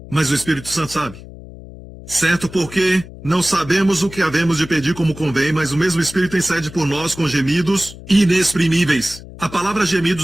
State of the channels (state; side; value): noise; left; hum, 16 dB below the sound